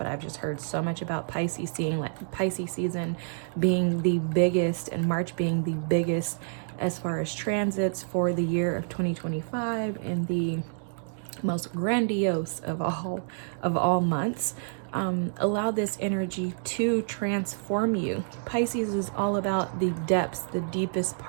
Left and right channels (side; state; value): left; silent; digital silence